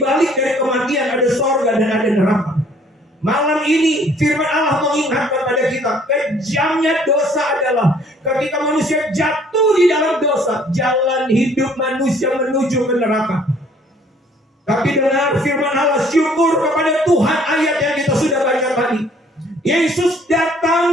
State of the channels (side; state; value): both; normal; correlation 0.59